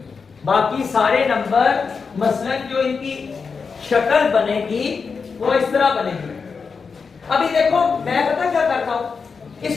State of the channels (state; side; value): quieter; right; 5.3 dB